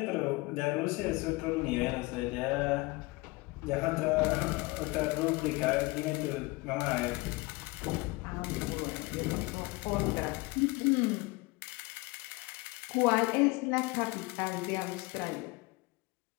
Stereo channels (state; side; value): quieter; right; 23.7 dB